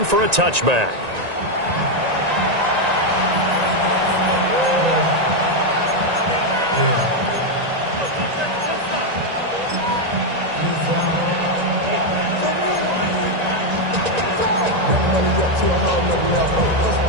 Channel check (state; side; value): late; left; 1.9 ms